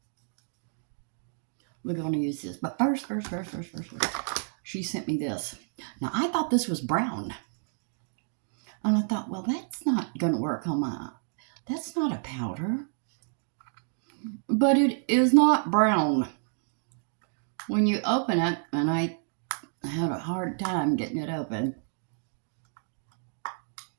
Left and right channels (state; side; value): silent; left; digital silence